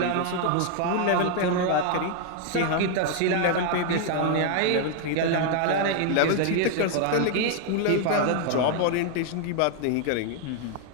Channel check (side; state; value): both; different; correlation 0.00